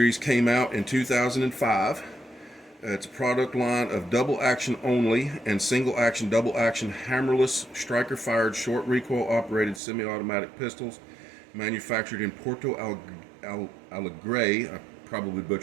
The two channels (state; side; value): drops out; left; at 9.8 s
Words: came out in 2005. It's a product line of double action only and single action, double action, hammerless, striker fired, short recoil operated semi-automatic pistols manufactured in Porto Alegre, I probably